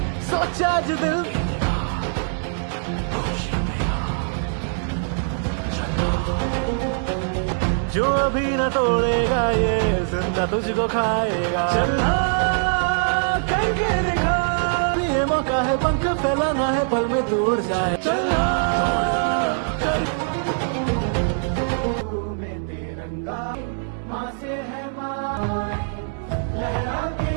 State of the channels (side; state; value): left; silent; digital silence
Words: सोचा जो दिल जो अभी न तोड़ेगा ये जिंदा तुझको खाएगा चलना करके दिखा ये मौका है पंख फैलाना है पल में दूर जाए चलना में तिरंगा माँ से है माँ लहरा के